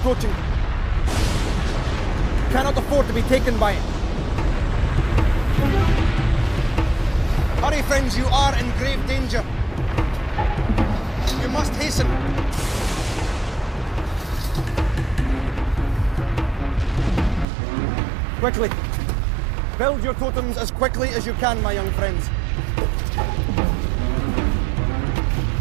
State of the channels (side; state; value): left; drops out; at 17.4 s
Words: You cannot afford to be taken by it. Hurry, friends, you are in grave danger. You must hasten. Quickly. Build your totems as quickly as you can, my young friends.